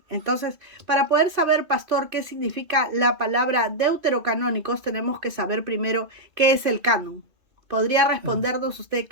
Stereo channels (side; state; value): left; late; 2.6 ms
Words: Entonces, para poder saber, pastor, qué significa la palabra deuterocanónicos, tenemos que saber primero qué es el canon. ¿Podría respondernos usted